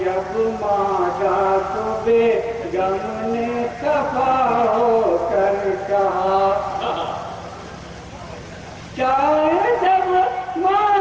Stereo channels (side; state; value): both; identical; correlation 1.00